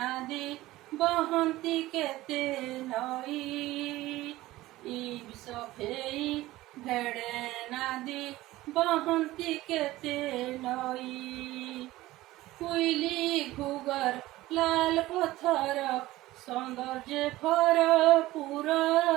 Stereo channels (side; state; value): left; quieter; 17.3 dB